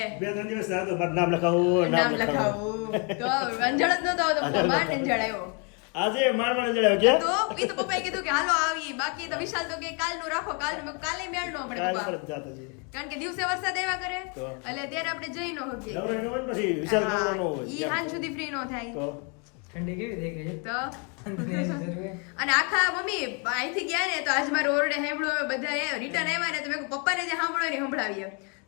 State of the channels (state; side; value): quieter; right; 35.5 dB